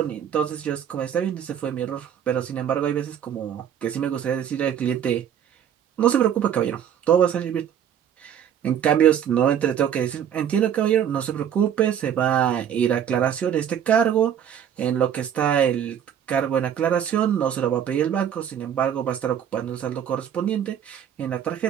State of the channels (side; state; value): left; quieter; 9.2 dB